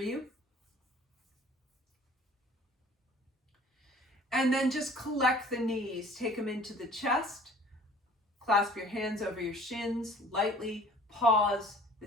And then just collect the knees. Take them into the chest. Clasp your hands over your shins. Lightly pause.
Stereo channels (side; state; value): both; normal; correlation 0.50